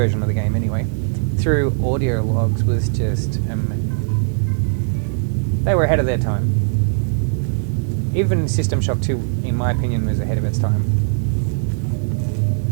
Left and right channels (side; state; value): left; silent; digital silence